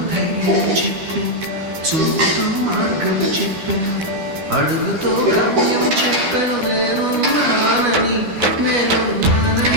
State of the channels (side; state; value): left; late; 12 ms